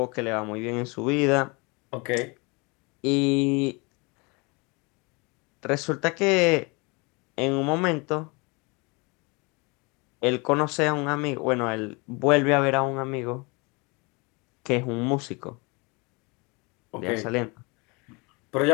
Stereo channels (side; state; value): right; quieter; 28.4 dB